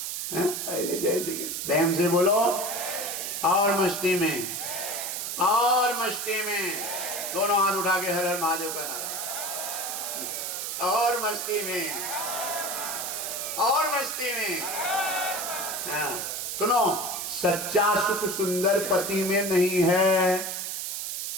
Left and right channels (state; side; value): noise; right; hiss, 4 dB below the sound